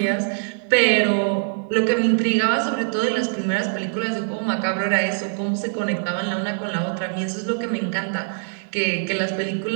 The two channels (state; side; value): silent; left; digital silence